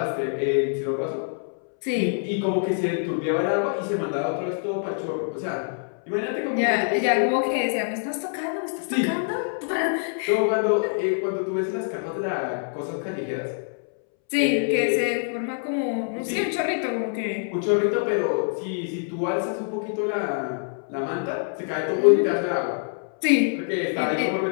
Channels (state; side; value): silent; right; 62 dB below the other